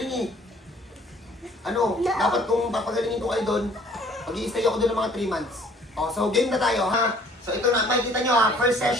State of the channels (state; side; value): normal; both; correlation 0.56